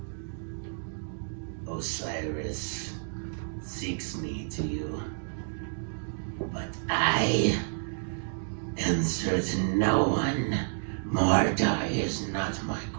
Osiris seeks me to you, but I answer to no one. Mordai is not my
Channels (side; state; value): left; silent; 58 dB below the other